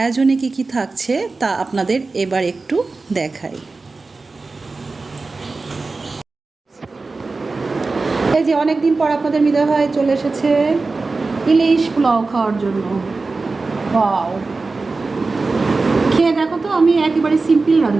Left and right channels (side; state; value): left; quieter; 3.8 dB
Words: কি থাকছে তা আপনাদের এবার একটু দেখাই। এই যে অনেকদিন পর আপনাদের মিদা ভাই চলে এসেছে ইলিশ পোলাও খাওয়ার জন্য। ওয়াও, খেয়ে দেখো তো, আমি একেবারে সিম্পল